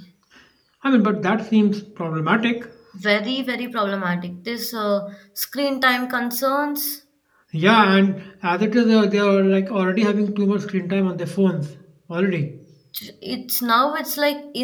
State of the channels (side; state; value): both; identical; correlation 1.00